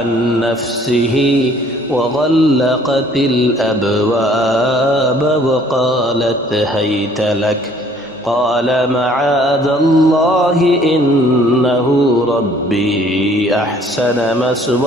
نفسه وغلقت الأبواب وقالت هيت لك قال معاذ الله إنه ربي أحسن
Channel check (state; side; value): noise; right; hum, 29 dB below the sound